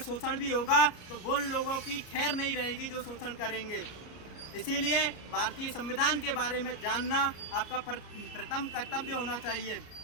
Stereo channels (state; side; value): late; right; 34 ms